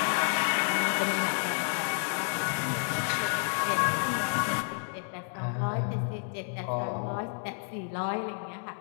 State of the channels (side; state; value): right; silent; 55 dB below the other